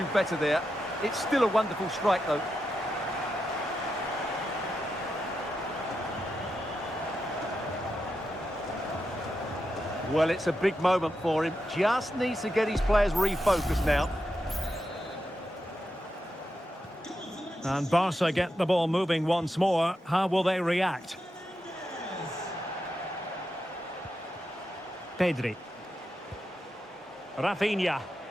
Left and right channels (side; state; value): both; normal; correlation 0.87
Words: do better there. It's still a wonderful strike, though. Well, it's a big moment for him. Just needs to get his players refocused now. And Barca get the ball moving once more. How will they react? Pedri. Rafinha.